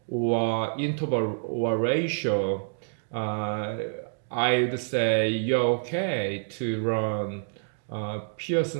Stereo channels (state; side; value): silent; left; digital silence